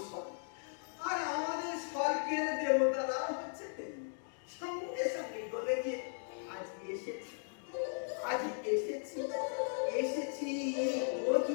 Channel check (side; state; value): right; silent; digital silence